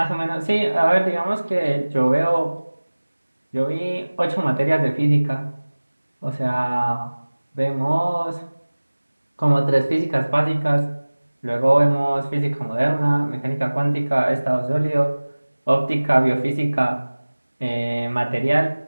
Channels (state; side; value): inverted; both; correlation -1.00